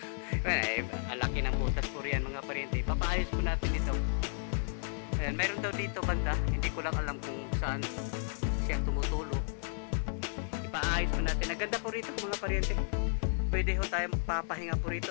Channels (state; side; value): silent; right; 56 dB below the other